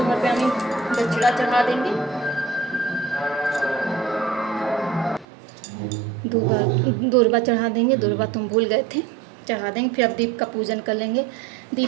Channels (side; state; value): left; drops out; at 5.2 s